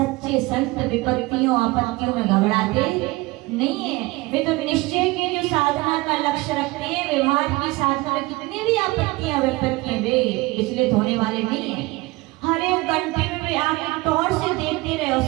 संत विपत्तियों आपत्तियों में घबराते नहीं है। वे तो निश्चय के जो साधना का लक्ष्य रखते हैं, व्यवहार की साधना में कितनी भी आपत्तियां विपत्तियां वे विचलित होने वाले नहीं है। हर एक घंटे में वे आके टॉर्च से देखते रहे। और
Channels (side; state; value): left; quieter; 21.8 dB